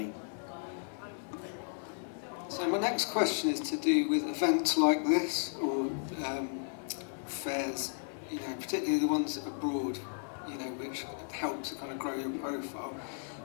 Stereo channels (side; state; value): right; silent; digital silence